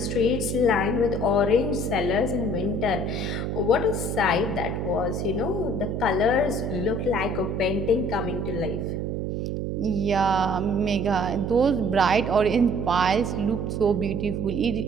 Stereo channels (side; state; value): right; noise; hum, 2 dB below the sound